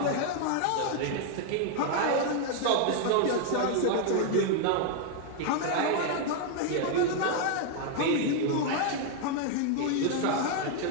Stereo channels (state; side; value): different; both; correlation 0.00